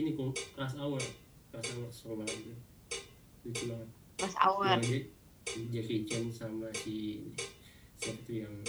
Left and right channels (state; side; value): identical; both; correlation 1.00